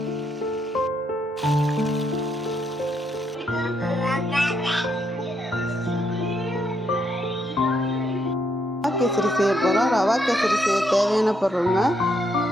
செய்ய போகிறோம். ரவா கேசரி செய்ய தேவையான பொருளுங்க,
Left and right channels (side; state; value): both; normal; correlation 0.76